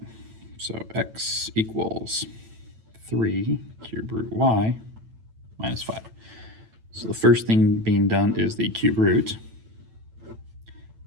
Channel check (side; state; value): left; late; 9.0 ms